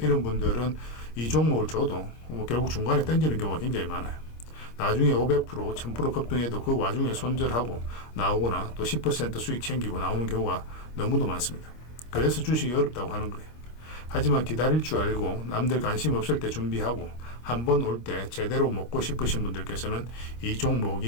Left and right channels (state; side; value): late; right; 25 ms